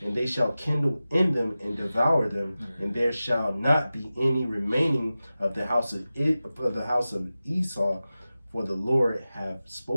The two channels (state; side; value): inverted; both; correlation -0.95